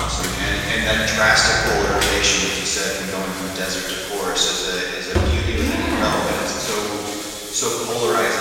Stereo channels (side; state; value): both; identical; correlation 1.00